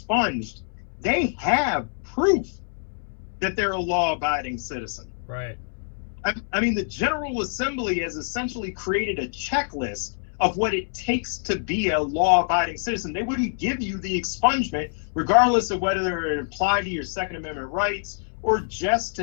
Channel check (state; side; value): silent; right; 62 dB below the other